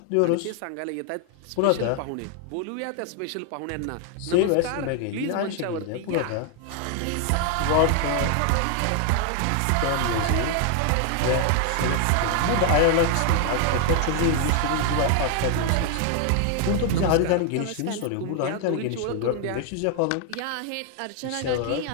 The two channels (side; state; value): both; different; correlation 0.00